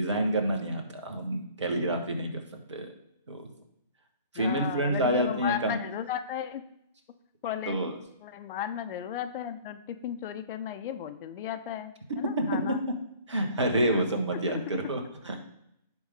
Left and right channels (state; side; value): inverted; both; correlation -0.48